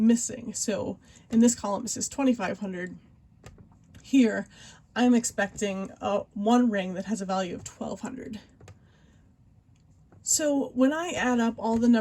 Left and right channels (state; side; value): identical; both; correlation 1.00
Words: So in this column it says $2,500. Here, I'm expecting one ring that has a value of $1,200. So when I add up all the